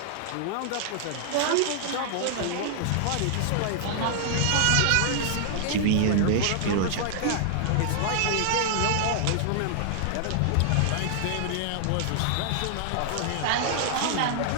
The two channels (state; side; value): different; both; correlation -0.01